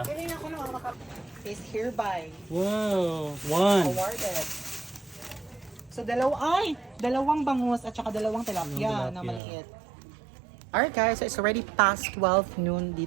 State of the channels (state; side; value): drops out; left; at 9.4 s